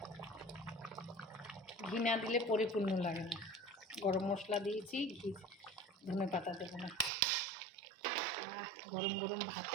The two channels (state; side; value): drops out; left; at 7.1 s